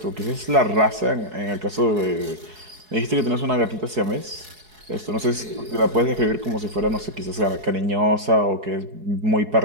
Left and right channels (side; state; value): left; late; 4.7 ms